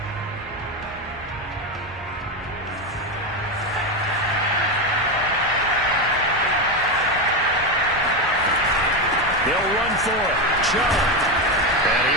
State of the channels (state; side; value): normal; both; correlation 0.12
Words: They'll run for it. Chubb. And